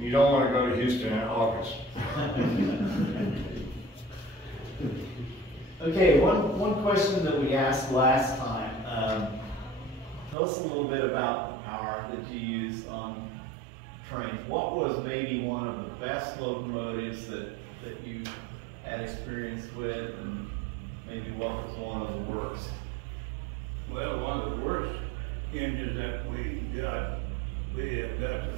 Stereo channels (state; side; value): drops out; left; at 10.4 s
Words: don't want to go to Houston in August. Okay, one question that we asked last time. Tell us a little bit about the power that you use on trains. What was maybe one of the best locomotives that you had experience with, and maybe what was one of the worst? Well, one of the worst engines that we had got